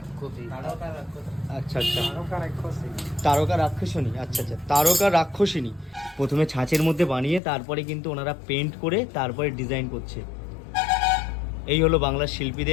আচ্ছা আচ্ছা, তারকা রাক্ষসিনী। আচ্ছা আচ্ছা, তারকা রাক্ষসিনী। প্রথমে ছাঁচের মধ্যে বানিয়ে তারপরে কিন্তু ওনারা পেন্ট করে তারপরে ডিজাইন করছে। এই হলো বাংলার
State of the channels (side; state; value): right; drops out; at 7.4 s